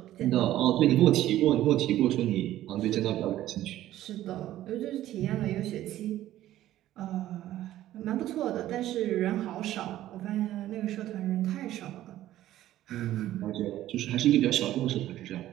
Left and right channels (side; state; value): left; quieter; 13.8 dB